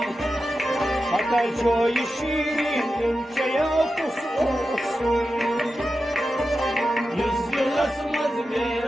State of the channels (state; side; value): normal; both; correlation 0.91